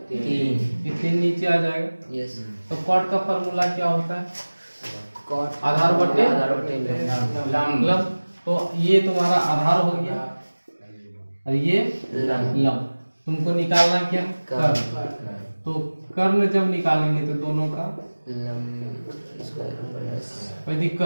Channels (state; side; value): inverted; both; correlation -1.00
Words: ये 3 नीचे आ जाएगा। यस तो कॉट का फॉर्मूला क्या होता है कॉट आधार बटे लंब लंब। तो ये तुम्हारा आधार हो गया और ये लंब। तुमको निकालना क्या कर्ण। तो कर्ण जब निकालेंगे तो दोनों का कोई